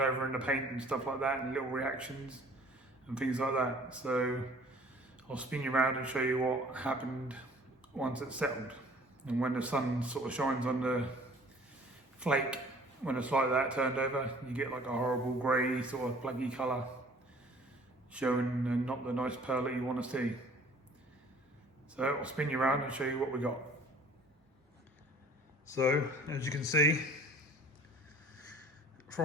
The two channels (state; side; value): normal; both; correlation 0.51